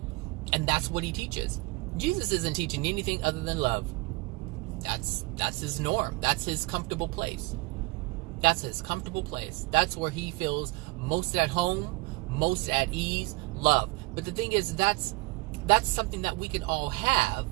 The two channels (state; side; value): quieter; left; 24.2 dB